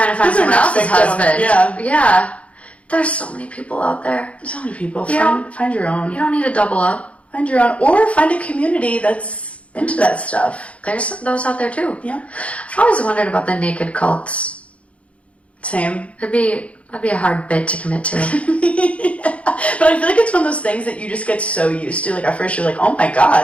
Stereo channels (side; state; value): right; late; 0.063 ms